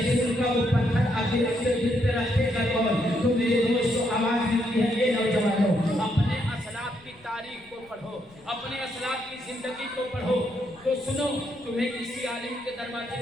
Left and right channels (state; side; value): noise; left; rumble, 28 dB below the sound